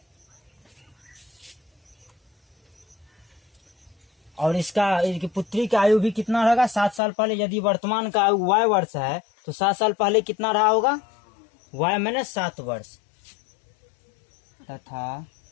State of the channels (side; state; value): right; drops out; at 7.0 s